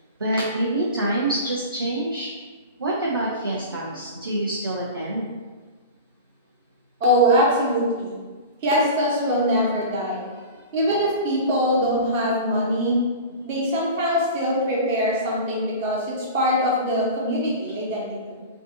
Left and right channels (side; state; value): both; inverted; correlation -0.32